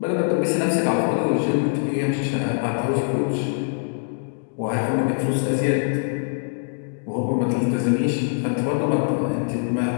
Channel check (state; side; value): silent; right; digital silence